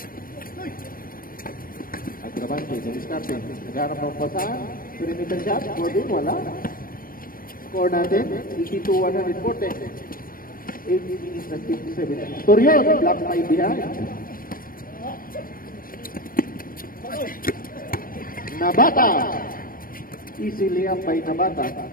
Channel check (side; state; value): right; late; 0.41 ms